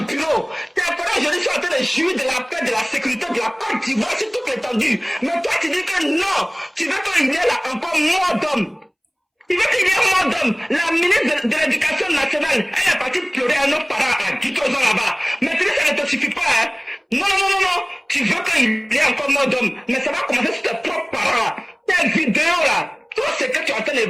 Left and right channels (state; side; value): identical; both; correlation 1.00